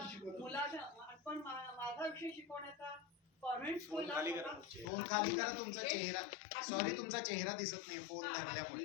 मुलाचा पण माझा विषय शिकवण्याचा कॉन्व्हेंट स्कूलला फोन खाली करा. तुमचा चेहरा, सॉरी तुमचा चेहरा दिसत नाही फोन लागल्यामुळे.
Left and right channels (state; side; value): drops out; right; at 4.9 s